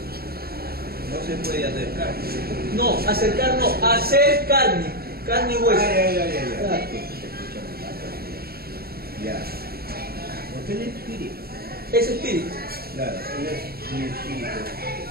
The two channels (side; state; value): left; late; 0.45 ms